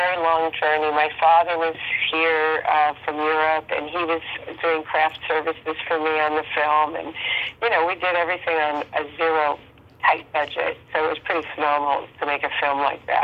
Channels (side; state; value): both; identical; correlation 1.00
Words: long journey. My father was here from Europe, and he was doing craft services for me on the film, and, we did everything on a zero tight budget, so it was pretty phenomenal to make a film like